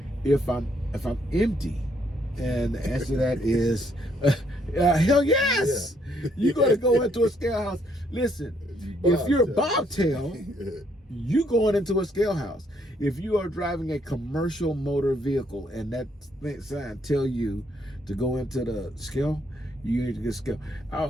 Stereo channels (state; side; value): normal; both; correlation 0.70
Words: if I'm empty? And the answer to that is hell yes. Yeah. You're going to go into a scale house. Listen, if you're a bobtail, you going into a scale house. If you are driving a commercial motor vehicle and that sign tell you to go into the scale, you need to get scale.